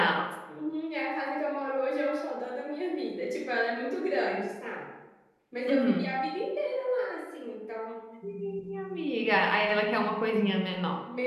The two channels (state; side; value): identical; both; correlation 1.00